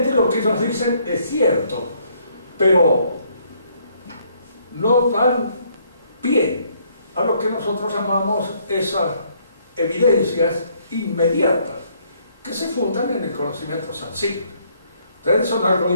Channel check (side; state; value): both; inverted; correlation -0.67